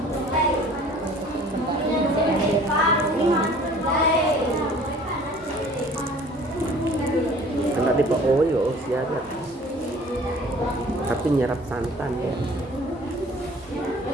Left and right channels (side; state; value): both; normal; correlation 0.50